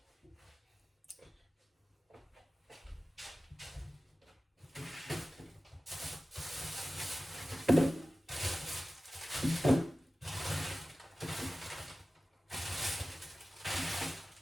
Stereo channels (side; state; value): both; normal; correlation 0.96